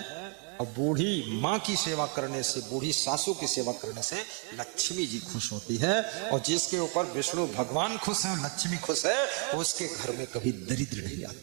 और बूढ़ी माँ की सेवा करने से, बूढ़ी सासू की सेवा करने से लक्ष्मी जी खुश होती है, और जिसके ऊपर विष्णु भगवान खुश है, लक्ष्मी खुश है, उसके घर में कभी दरिद्र नहीं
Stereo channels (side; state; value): left; quieter; 37.9 dB